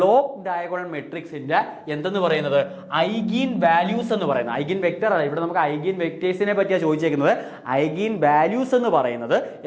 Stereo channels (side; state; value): both; identical; correlation 1.00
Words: ഡയഗണൽ മെട്രിക്സിന്റെ എന്തെന്ന് പറയുന്നത് ഐഗീൻ വാല്യൂസ് എന്ന് പറയുന്നത്, ഐഗീൻ വെക്ടർ അല്ല, ഇവിടെ നമുക്ക് ഐഗീൻ വെക്ടേഴ്സിനെ പറ്റിയാണ് ചോദിച്ചേക്കുന്നത്. ഐഗീൻ വാല്യൂസ് എന്ന് പറയുന്നത്